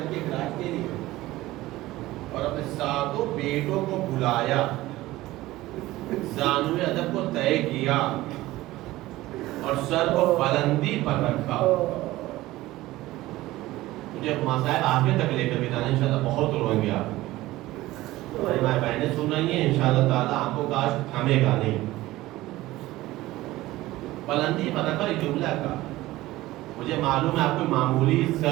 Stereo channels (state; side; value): quieter; left; 17.4 dB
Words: کے گراج دے لیا، اور اپنے 7 بیٹوں کو بلایا، زانوِ ادب کو طے کیا اور سر کو بلندی پر رکھا۔ مجھے مسائل آگے تک لے کر بھی جانا، انشاءاللہ بہت روئیں گے آپ، ہماری ماں بہنیں سن رہی ہیں، انشاءاللہ تعالیٰ آپ کو کاش تھامے گا نہیں۔ بلندی پر رکھا ایک جملہ کا، مجھے معلوم ہے آپ کوئی معمولی